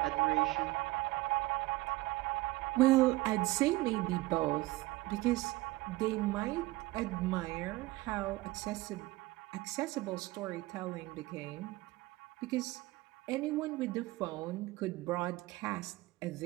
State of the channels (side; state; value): left; quieter; 19.5 dB